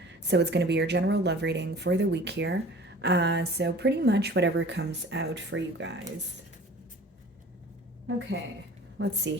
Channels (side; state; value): both; normal; correlation 0.45